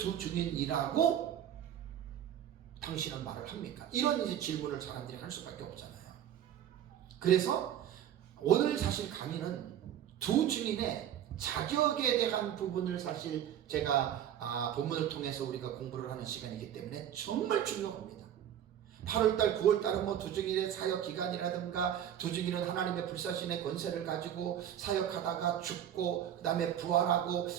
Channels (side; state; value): left; quieter; 10.3 dB